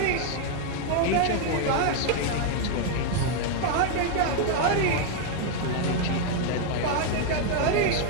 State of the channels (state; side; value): different; both; correlation 0.00